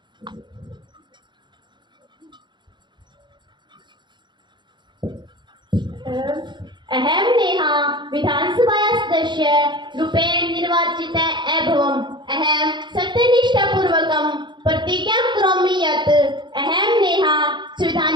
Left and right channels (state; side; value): late; left; 0.22 ms